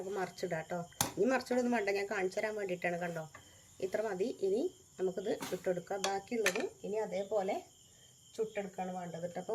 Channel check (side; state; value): both; identical; correlation 1.00